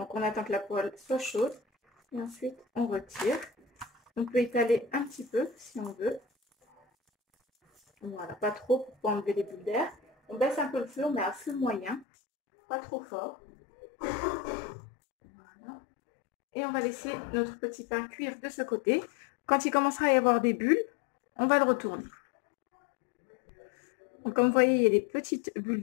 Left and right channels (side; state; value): right; drops out; at 12.1 s